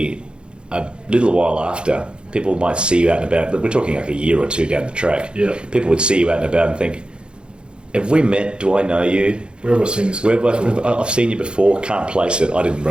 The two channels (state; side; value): late; left; 0.053 ms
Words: a little while after. People might see you out and about. But we're talking like a year or 2 down the track. Yeah. People would see you out and about and think, have we met? Do I know you? Where have I seen this? I've seen you before. Can't place it. I didn't